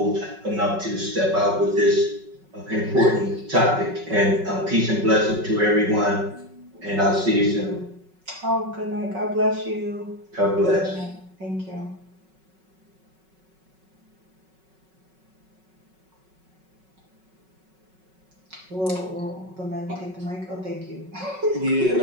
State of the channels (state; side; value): late; left; 5.4 ms